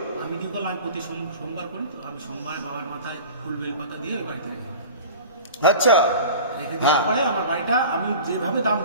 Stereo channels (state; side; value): inverted; both; correlation -0.38